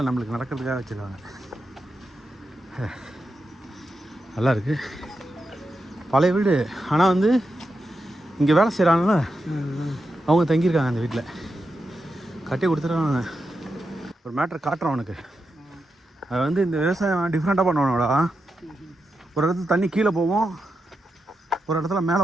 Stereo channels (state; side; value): normal; both; correlation 0.87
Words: நம்மளுக்கு நடக்கிறதுக்காக வச்சுருக்காங்க. நல்லா இருக்குது, பழைய வீடு. ஆனால் வந்து இங்கே வேலை செய்கிறாங்கள, அவங்க தங்கியிருக்காங்க அந்த வீட்டில். கட்டி கொடுத்துருவாங்க. ஒரு மேட்ரு காட்டுறோம் அவனுக்கு. அது வந்து இந்த விவசாயம் டிஃப்ரெண்ட்டாக பண்ணுவானோடா. ஒரு இடத்துல தண்ணி கீழே போவோம், ஒரு இடத்துல மேலே